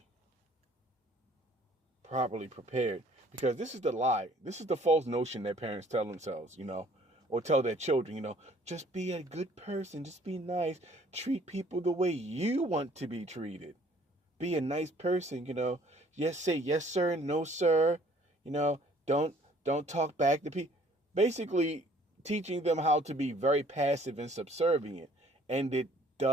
prepared, because this is the lie. This is the false notion that parents tell themselves, or tell their children, just be a good person, just be nice, treat people the way you want to be treated. Be a nice person, Yes, say yes sir, no sir. Don't talk back to people. Basically teaching them how to be very passive and subservient. And it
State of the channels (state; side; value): normal; both; correlation 0.57